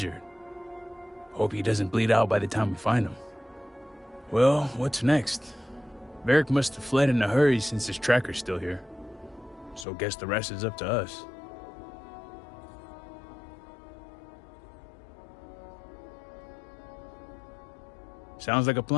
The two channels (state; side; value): drops out; right; at 9.9 s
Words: Hope he doesn't bleed out by the time we find him. Well, what's next? Varric must have fled in a hurry since his tracker's still here. So guess the rest is up to us. Sounds like a